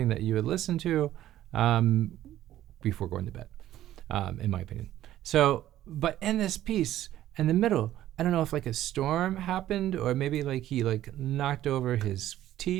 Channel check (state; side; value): quieter; left; 13.2 dB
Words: that you would listen to before going to bed, in my opinion. So, but in this piece, in the middle, I don't know if like a storm happened or maybe like he like knocked over his